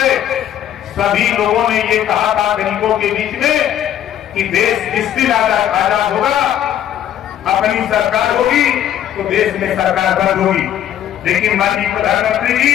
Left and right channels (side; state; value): right; quieter; 10.9 dB